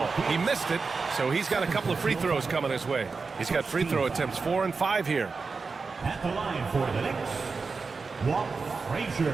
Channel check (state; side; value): quieter; left; 4.5 dB